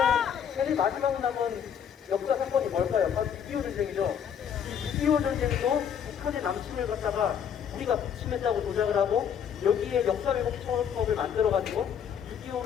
제일 마지막 남은 역사 사건이 뭘까요? 바로 6.25 전쟁이죠. 이 6.25 전쟁도 북한의 남침을 갖다가 우리가 북침했다고 조작을 하고 여기에 역사왜곡 처벌법을 만들어가지고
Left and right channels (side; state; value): right; quieter; 8.2 dB